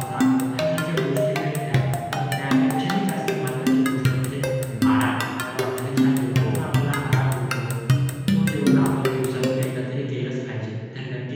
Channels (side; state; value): both; identical; correlation 1.00